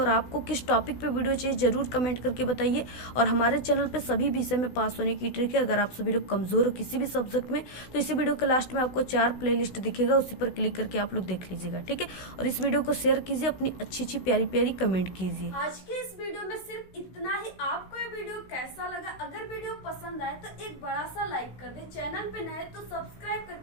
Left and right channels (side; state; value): right; late; 16 ms